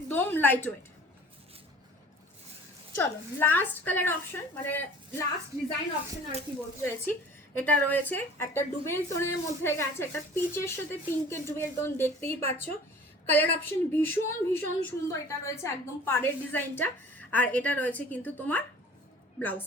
লাইট ওয়েট। চলো লাস্ট কালার অপশন, মানে লাস্ট ডিজাইন অপশন আর কি বলতে চাইছি, এটা রয়েছে একটা ডুবেল টোনের মধ্যে গেছে, একটা পিচের সাথে পিঙ্কের ডুবেল টোন, দেখতেই পাচ্ছ কালার অপশন ভীষণ সুন্দর। এটা রয়েছে একদম পাড়ের ডিজাইনটা, আর এটা রয়েছে কিন্তু তোমার ব্লাউজ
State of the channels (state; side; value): normal; both; correlation 0.46